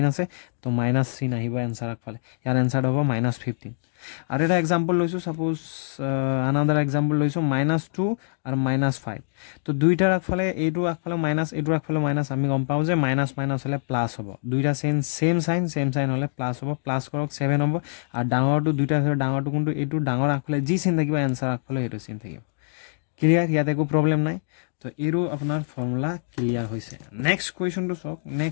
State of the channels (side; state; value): right; silent; digital silence